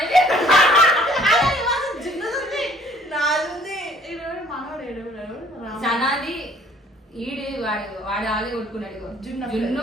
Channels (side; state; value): both; normal; correlation 0.58